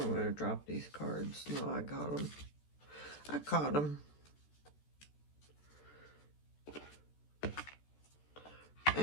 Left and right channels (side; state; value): right; late; 14 ms